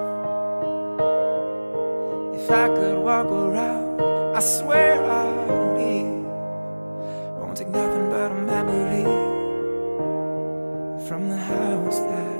if I could walk around. I swear I'll leave. Won't take nothing but a memory from the house that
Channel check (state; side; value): inverted; both; correlation -1.00